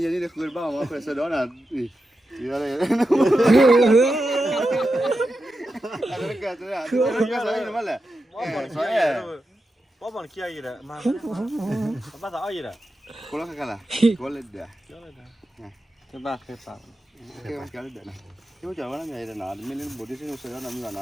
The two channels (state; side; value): normal; both; correlation 0.89